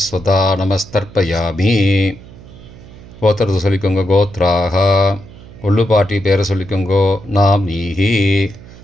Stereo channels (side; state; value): right; noise; hum, 19 dB below the sound